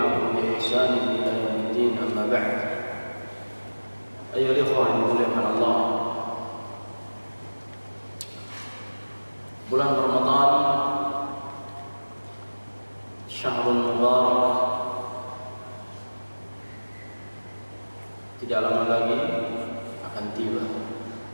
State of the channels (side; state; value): both; inverted; correlation -1.00